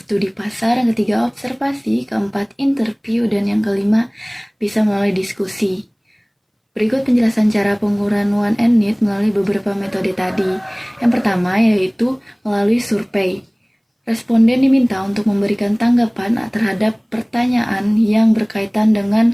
pasar, yang ketiga observasi, keempat interview, dan yang kelima bisa melalui diskusi. Berikut penjelasan cara pengukuran One and Need melalui beberapa metode tadi. Yang pertama yaitu melalui survei. Responden diminta untuk memberikan tanggapan terhadap pertanyaan yang berkaitan dengan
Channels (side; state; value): both; identical; correlation 1.00